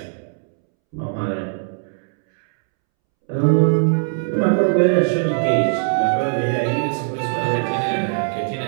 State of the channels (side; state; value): left; silent; 66 dB below the other